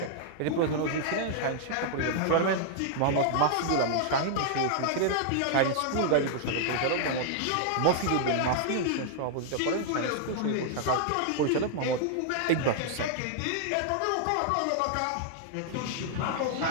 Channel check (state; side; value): different; both; correlation -0.01